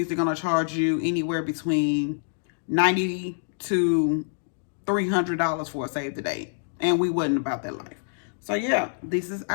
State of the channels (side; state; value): right; silent; digital silence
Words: they're going to charge you anywhere between $90 to $300 for a save the date, and we wasn't about that life. So yeah, this is